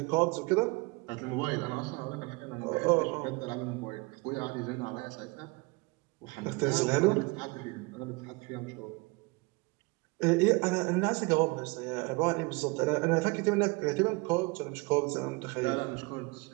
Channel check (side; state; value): left; quieter; 26.7 dB